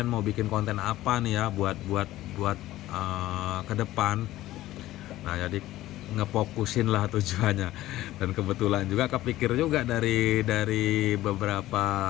mau bikin konten apa nih ya buat ke depan. Nah, jadi ngefokusin lah tujuannya, dan kebetulan juga kepikir juga dari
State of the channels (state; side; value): quieter; right; 15.5 dB